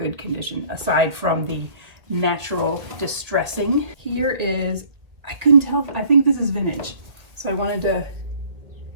condition, aside from the natural distressing. Here is, I couldn't tell, I think this is vintage. So I wanted to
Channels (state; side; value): late; left; 1.9 ms